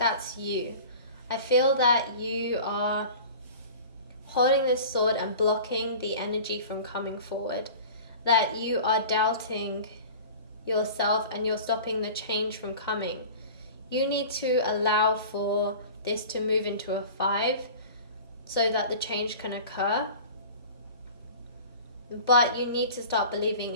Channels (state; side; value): inverted; both; correlation -0.39